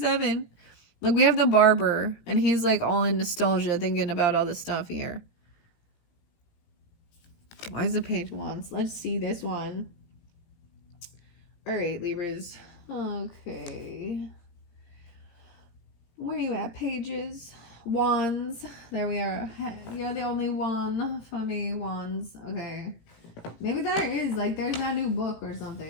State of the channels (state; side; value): late; right; 18 ms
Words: Look, we have the barber, and he's like all in nostalgia, thinking about all this stuff here. Why is the Page of Wands? Let's see this one. All right, Libras. Okay. Where are you at, Pages? Wands. There we are. You're the only one for me, Wands. Okay. Maybe there is, like, there's that new book or